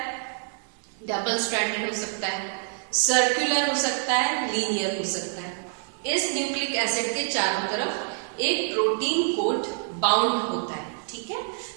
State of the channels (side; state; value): left; silent; 61 dB below the other